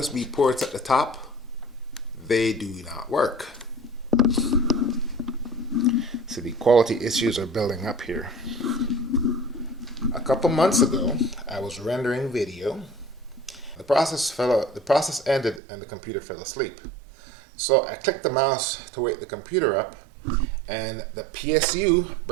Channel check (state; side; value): drops out; left; at 15.6 s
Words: ports at the top, they do not work. So the quality issues are building up here. A couple months ago, I was rendering video. The process ended and the computer fell asleep. So I clicked the mouse to wake the computer up, and the PSU